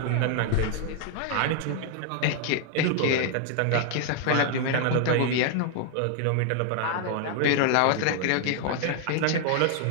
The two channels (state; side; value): different; both; correlation 0.00